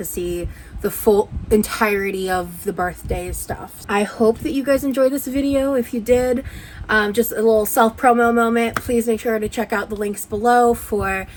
see the full entirety of the birthday stuff. I hope that you guys enjoyed this video. If you did, just a little self-promo moment, please make sure to check out the links below for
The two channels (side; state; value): both; identical; correlation 1.00